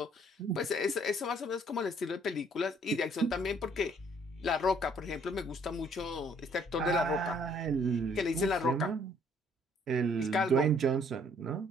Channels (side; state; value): both; normal; correlation 0.62